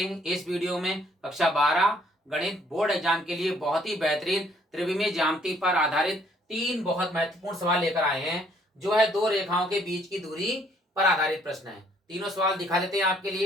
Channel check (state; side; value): normal; both; correlation 0.64